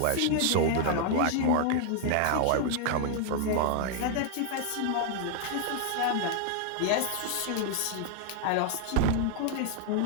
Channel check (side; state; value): both; different; correlation 0.00